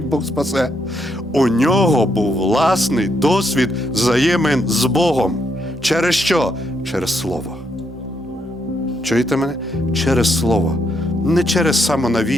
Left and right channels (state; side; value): normal; both; correlation 0.77